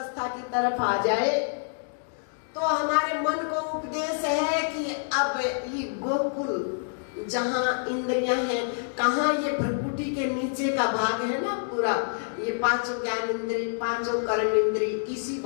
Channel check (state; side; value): silent; right; digital silence